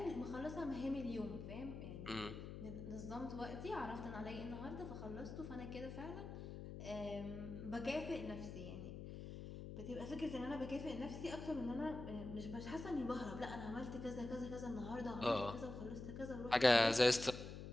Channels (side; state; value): left; noise; hum, 8 dB below the sound